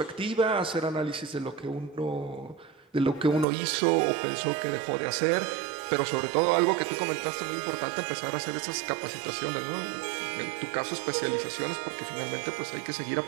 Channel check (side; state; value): left; drops out; at 3.5 s